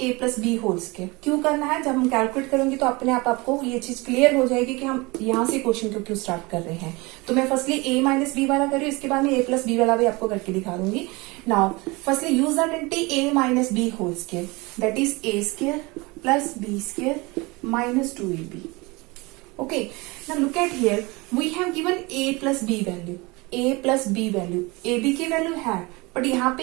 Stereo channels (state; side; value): quieter; left; 24.8 dB